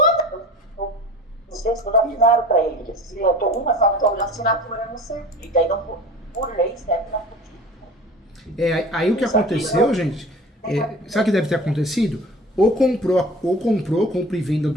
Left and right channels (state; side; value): normal; both; correlation 0.39